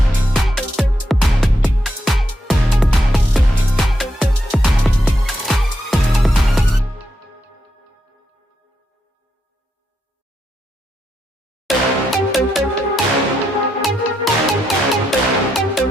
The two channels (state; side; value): normal; both; correlation 0.82